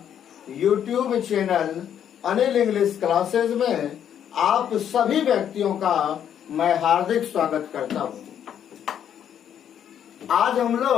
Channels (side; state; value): right; quieter; 9.4 dB